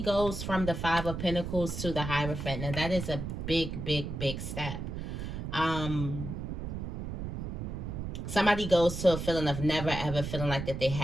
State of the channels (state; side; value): noise; right; rumble, 5 dB below the sound